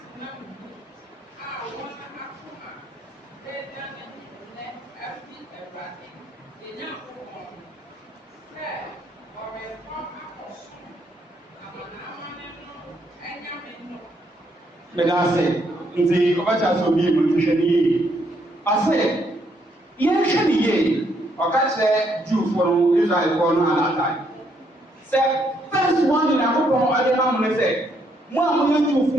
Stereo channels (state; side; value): normal; both; correlation 0.73